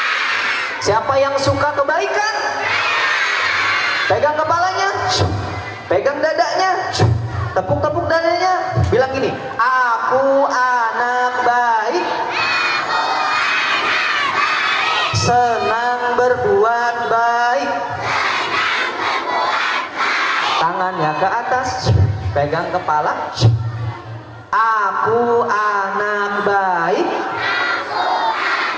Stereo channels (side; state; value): both; identical; correlation 1.00